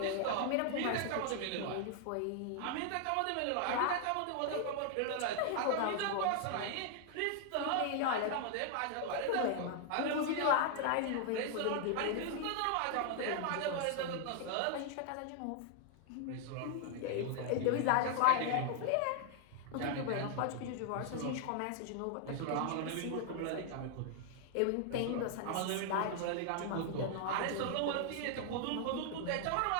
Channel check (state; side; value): different; both; correlation 0.00